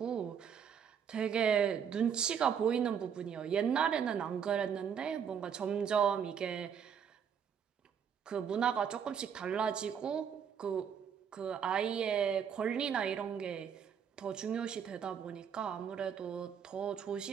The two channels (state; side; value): quieter; left; 7.7 dB